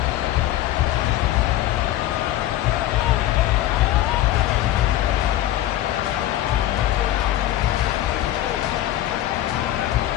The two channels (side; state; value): right; quieter; 13.9 dB